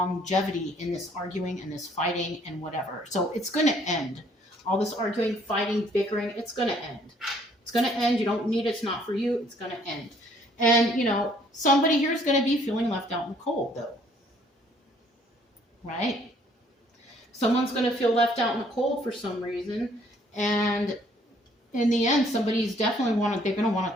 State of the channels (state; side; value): normal; both; correlation 0.62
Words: in this arguing and this fighting and whatever. So it's going to end. All this arguing, fighting, bickering, it's going to end. It's going to end. You don't need it. It's not for you. It's going to end. And, you know, somebody here is going to be feeling left out in the cold, though. Right? Someone's going to feel left out in the cold for some reason. And in the end, somebody's definitely they're going to want